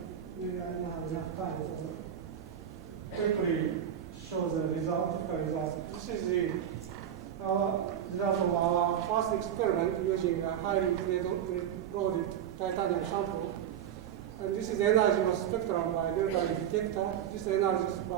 Maybe I don't have enough time, so quickly show the result, typical result. This is our result of our first experiment using a highly loaded titanium sample. And this is energy of spectrum by delta E detector. This energy is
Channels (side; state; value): left; quieter; 9.8 dB